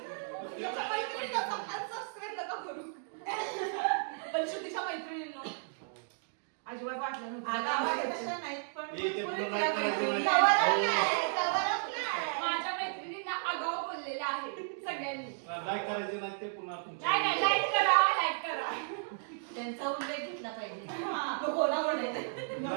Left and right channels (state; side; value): silent; left; digital silence